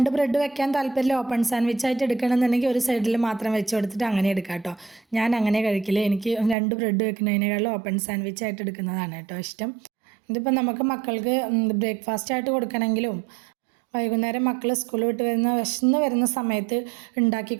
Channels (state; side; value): drops out; left; at 6.6 s